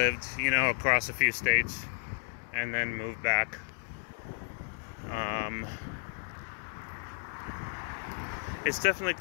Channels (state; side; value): silent; right; 56 dB below the other